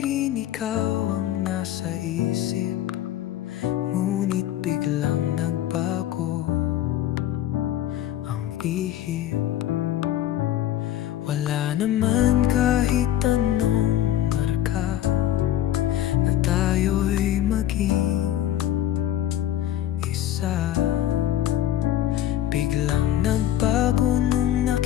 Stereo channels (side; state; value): right; quieter; 12.4 dB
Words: rin ikaw ang nasa isip. Ngunit biglang nagbago ang ihip. Wala naman kahit anong marka na tayo'y maging isa. Biglang nagbago nung